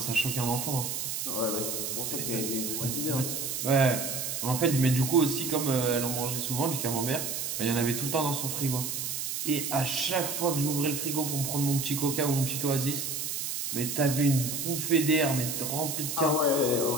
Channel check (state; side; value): noise; right; hiss, 3 dB below the sound